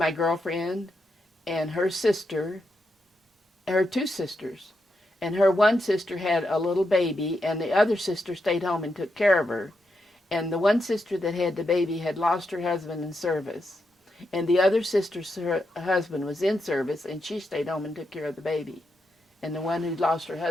girlfriend and her sister, her 2 sisters. And her one sister had a little baby, and the other sister stayed home and took care of her. And the one sister that had the baby had lost her husband in service. And the other sister's husband was in service, and she stayed home and took care of the baby. And the one who lost her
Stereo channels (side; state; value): both; normal; correlation 0.84